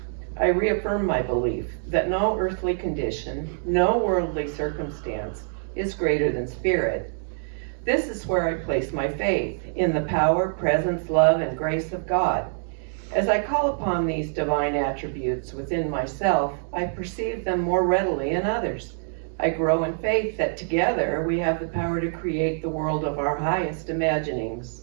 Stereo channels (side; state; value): left; silent; digital silence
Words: I reaffirm my belief that no earthly condition, no worldly circumstance is greater than spirit. This is where I place my faith, in the power, presence, love, and grace of God. As I call upon these divine attributes within myself, I perceive them more readily in others. I grow in faith that together we have the power to create the world of our highest